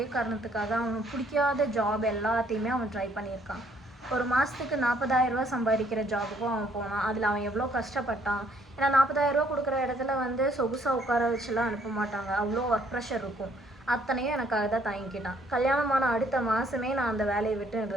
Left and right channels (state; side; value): normal; both; correlation 0.65